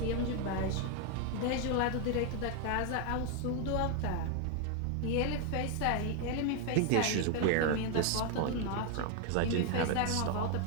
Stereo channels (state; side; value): different; both; correlation 0.01